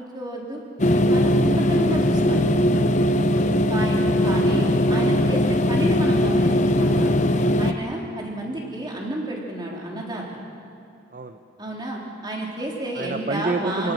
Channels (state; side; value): normal; both; correlation 0.64